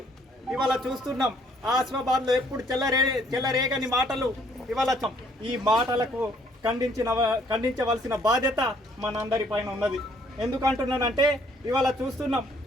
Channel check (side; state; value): both; normal; correlation 0.64